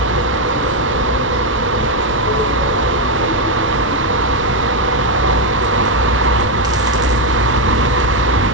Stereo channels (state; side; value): normal; both; correlation 0.03